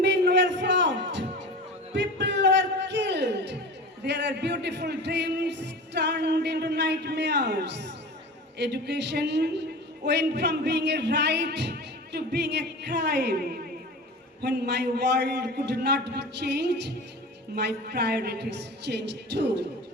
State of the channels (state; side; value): normal; both; correlation 0.34